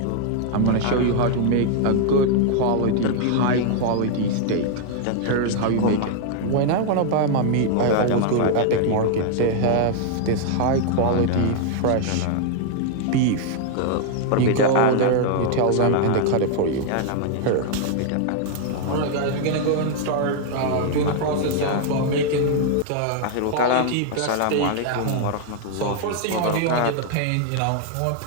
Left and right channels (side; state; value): both; different; correlation 0.00